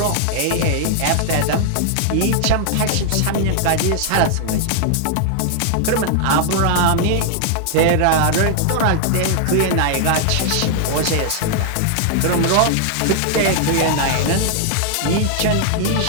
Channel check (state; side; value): different; both; correlation 0.00